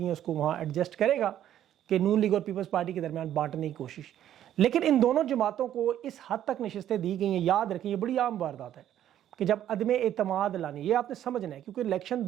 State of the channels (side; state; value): left; quieter; 11.3 dB